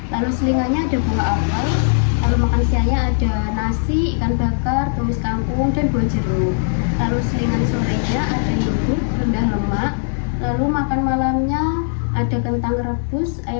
Lalu selingannya ada buah apel. Lalu makan siangnya ada nasi, ikan bakar, tumis kangkung, dan buah jeruk. Lalu selingan sorenya ada yogurt rendah lemak. Lalu makan malamnya ada kentang rebus,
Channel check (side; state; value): right; silent; digital silence